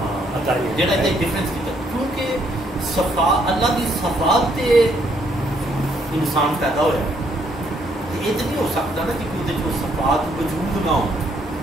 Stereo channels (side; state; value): both; normal; correlation 0.70